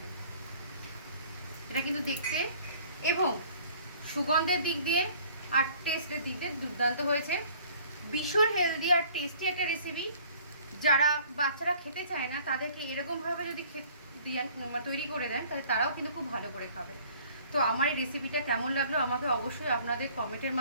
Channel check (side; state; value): both; inverted; correlation -0.53